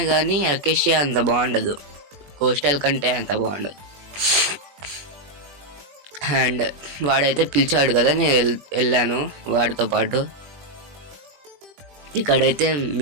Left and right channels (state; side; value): late; left; 21 ms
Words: కానీ అకేషియా అంత బాగుండదు, కోస్టల్ కంటే అంత బాగుండదు. అండ్ వాడైతే పిలిచాడు కదా, నేను వెళ్ళాను వాడితో పాటు. ఇక్కడైతే